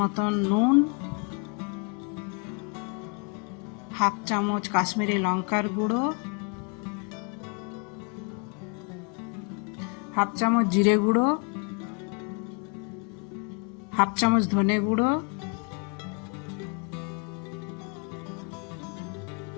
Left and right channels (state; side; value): quieter; right; 33.4 dB